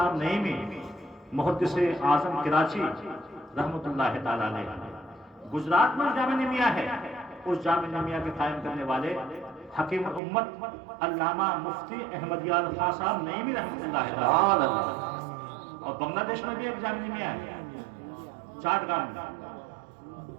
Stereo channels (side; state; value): left; drops out; at 10.2 s